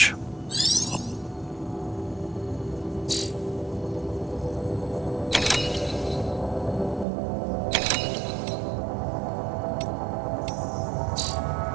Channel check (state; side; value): drops out; left; at 7.1 s